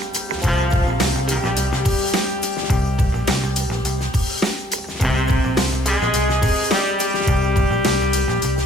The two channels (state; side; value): normal; both; correlation 0.65